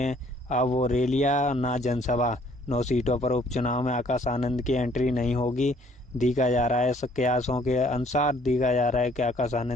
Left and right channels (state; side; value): normal; both; correlation 0.60